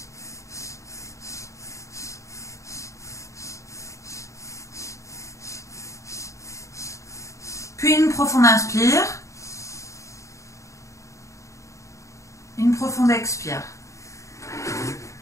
Puis une profonde inspire, une profonde expire.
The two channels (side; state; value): right; late; 0.15 ms